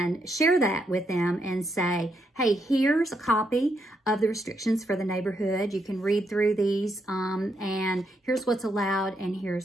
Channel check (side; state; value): both; normal; correlation 0.79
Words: share that with them and say, hey, here's a copy of the restrictions for the neighborhood. You can read through these and here's what's allowed and